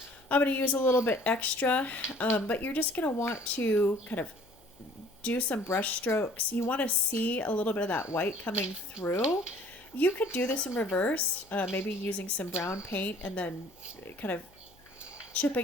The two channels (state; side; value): noise; left; hum, 29 dB below the sound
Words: I'm going to use a little bit extra, but you're just going to want to kind of do some brush strokes. You want to see a little bit of that white coming through. You could do this in reverse, maybe using some brown paint and then kind of